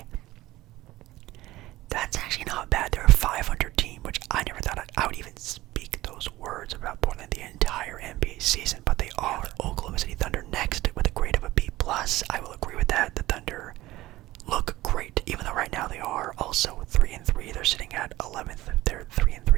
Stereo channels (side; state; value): left; quieter; 17.2 dB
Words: that's actually not bad. They're a 500 team, which I never thought I would even speak those words about Portland the entire NBA season, but they are. Oklahoma City Thunder next with a grade of a B+. I will agree with that. The Thunder look great, even though right now they are also 3-3. They're sitting at 11th. They're